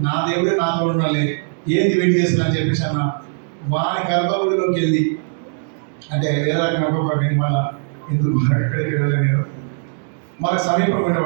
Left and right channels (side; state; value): left; silent; 66 dB below the other